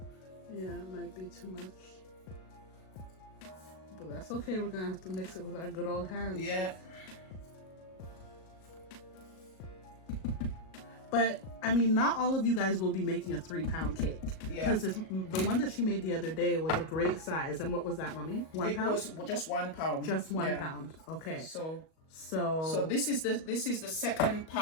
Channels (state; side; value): late; right; 37 ms